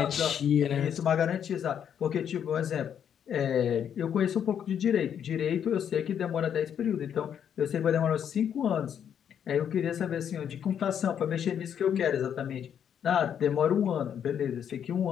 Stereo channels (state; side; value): quieter; right; 8.7 dB